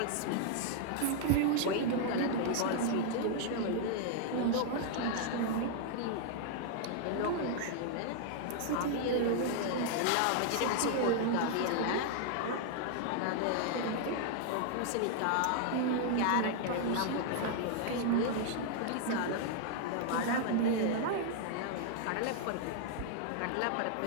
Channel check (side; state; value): both; different; correlation 0.00